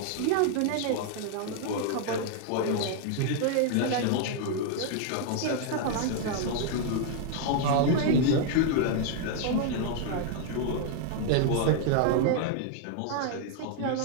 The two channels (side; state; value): both; different; correlation 0.00